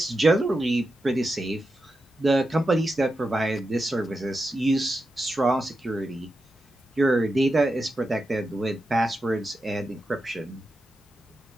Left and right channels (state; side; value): normal; both; correlation 0.89